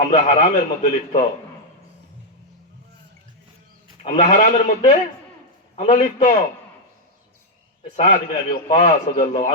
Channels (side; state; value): both; normal; correlation -0.01